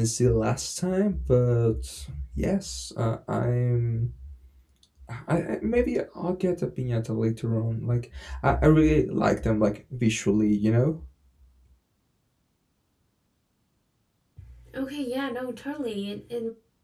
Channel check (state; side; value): identical; both; correlation 1.00